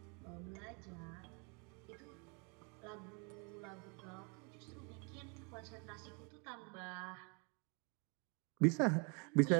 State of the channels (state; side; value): quieter; left; 33.8 dB